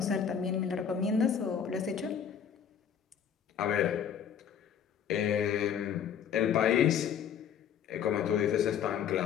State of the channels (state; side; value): quieter; right; 8.2 dB